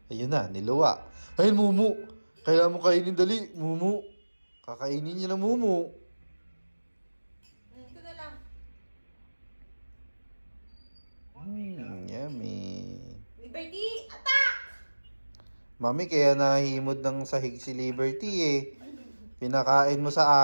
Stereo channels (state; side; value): inverted; both; correlation -1.00